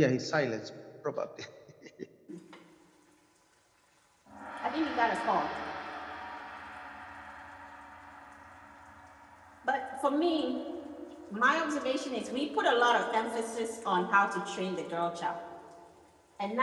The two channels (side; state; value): both; identical; correlation 1.00